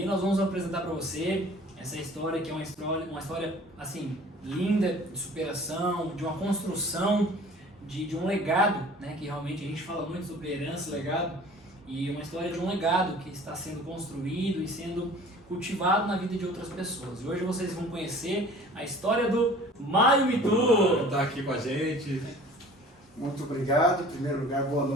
E nós vamos apresentar para você essa história que é uma história assim, linda, de superação, de uma construção, de um legado, né? Que realmente a gente fala muito sobre herança, legado, e uma história de um legado que está sendo construído e sendo cultivado na vida de outras pessoas. E hoje vocês vão conhecer a história do Mário Mitu. Está aqui com a gente. Muito obrigado. Em primeiro lugar, boa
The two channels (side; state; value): both; normal; correlation 0.47